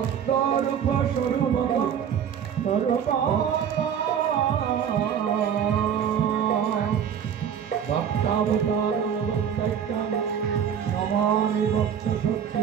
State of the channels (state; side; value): quieter; left; 8.4 dB